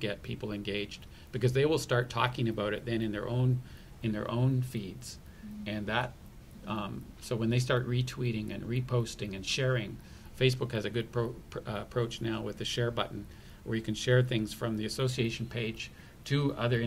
people engaged, because they will start talking about it then in their own feeds. And that so when they start retweeting and reposting and sharing, Facebook has a good approach now with the share button, where you can share things from the association page to other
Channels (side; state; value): both; identical; correlation 1.00